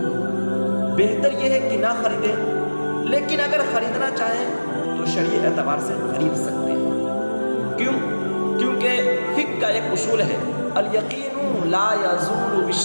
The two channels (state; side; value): inverted; both; correlation -1.00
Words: بہتر یہ ہے کہ نہ خریدیں۔ لیکن اگر خریدنا چاہیں تو شرعی اعتبار سے خرید سکتے ہیں۔ کیوں؟ کیونکہ فقہ کا ایک اصول ہے، الیقین لا یزول